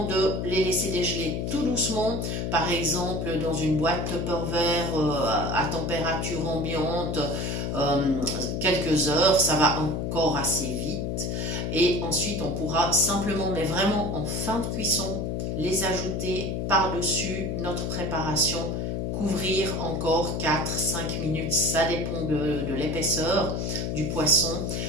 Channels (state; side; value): noise; left; hum, 1 dB below the sound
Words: de les laisser dégeler tout doucement. Par exemple, dans une boîte Tupperware à température ambiante, quelques heures, ça va encore assez vite. Et ensuite, on pourra simplement, mais vraiment en fin de cuisson, les ajouter par-dessus notre préparation. Couvrir encore 4-5 minutes, ça dépend de l'épaisseur du poisson,